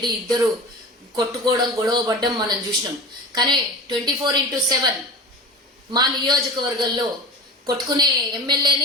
ఇద్దరు కొట్టుకోవడం గొడవ పడ్డం మనం చూసినాం. కానీ 24/7 మా నియోజకవర్గంలో కొట్టుకునే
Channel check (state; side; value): normal; both; correlation 0.33